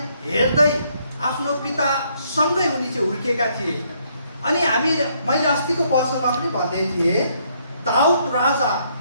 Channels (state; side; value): inverted; both; correlation -0.70